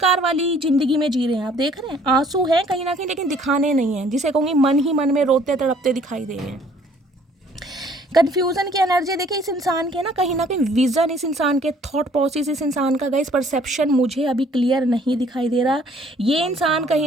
वाली जिंदगी में जी रहे हैं। आप देख रहे हैं आंसू हैं कहीं ना कहीं, लेकिन दिखाने नहीं है, जिसे कहूँगी मन ही मन में रोते तड़पते दिखाई दे रहे हैं। कन्फ्यूज़न की एनर्जी देखिए इस इंसान के ना कहीं विज़न, इस इंसान के थॉट प्रोसेस, इस इंसान का गाइस परसेप्शन मुझे अभी क्लियर नहीं दिखाई दे रहा। ये इंसान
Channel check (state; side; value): normal; both; correlation 0.59